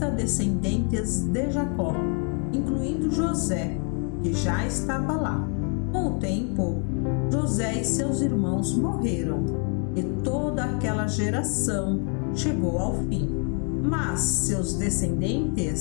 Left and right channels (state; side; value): quieter; right; 37.4 dB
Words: descendentes de Jacó, incluindo José, que já estava lá. Com o tempo, José e seus irmãos morreram, e toda aquela geração chegou ao fim. Mas seus